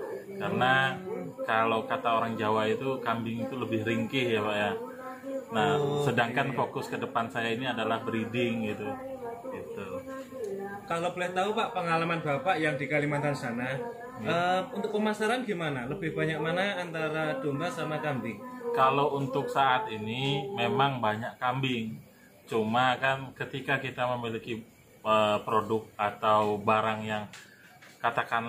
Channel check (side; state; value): both; identical; correlation 1.00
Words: Karena kalau kata orang Jawa itu kambing itu lebih ringkih ya Pak ya. Nah, sedangkan fokus ke depan saya ini adalah breeding gitu. Gitu. Kalau boleh tahu Pak, pengalaman Bapak yang di Kalimantan sana, untuk pemasaran gimana? Lebih banyak mana antara domba sama kambing? Kalau untuk saat ini memang banyak kambing. Cuma kan ketika kita memiliki produk atau barang yang